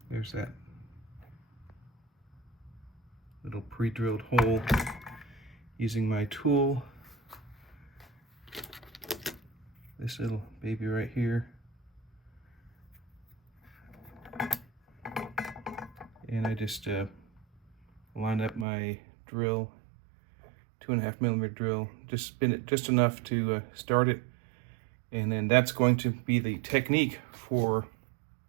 There's that little pre-drilled hole using my tool. This little baby right here. And I just line up my drill, 2.5mm drill, just spin it just enough to start it. And then that's going to be the technique for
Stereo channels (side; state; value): left; drops out; at 18.7 s